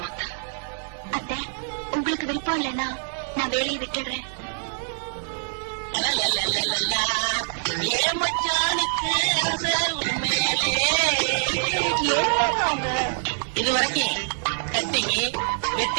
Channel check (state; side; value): silent; left; 62 dB below the other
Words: அத்தை, உங்களுக்கு விருப்பம் இல்லைன்னா நான் வேலையை விட்டுடுறேன். ஏ மச்சானுக்கு ஆசை உண்மையிலே. இது வரைக்கும் கட்டிங்க